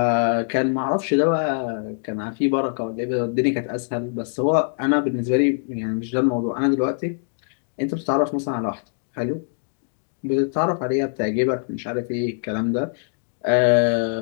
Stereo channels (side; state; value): right; silent; digital silence